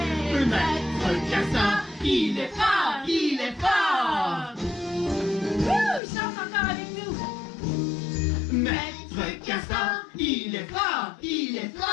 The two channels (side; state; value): right; drops out; at 6.0 s